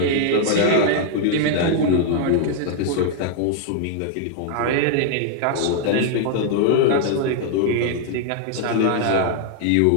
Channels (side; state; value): both; different; correlation 0.00